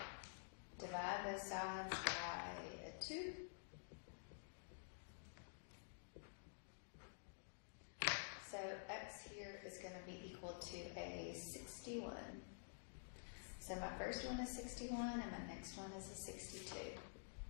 Divide both sides by a 2. So x here is going to be equal to a 61. So my first one is 61 and my next one is a 62.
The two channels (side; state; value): right; silent; digital silence